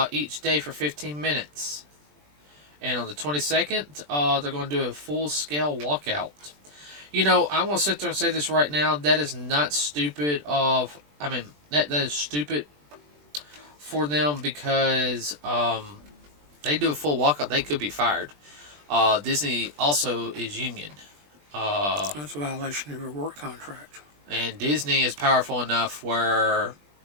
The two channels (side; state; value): left; late; 20 ms